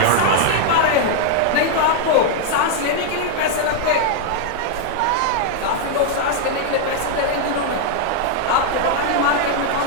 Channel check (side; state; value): both; different; correlation 0.00